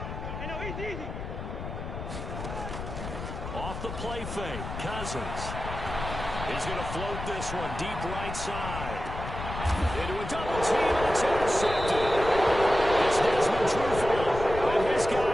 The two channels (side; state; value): left; noise; rumble, 8 dB below the sound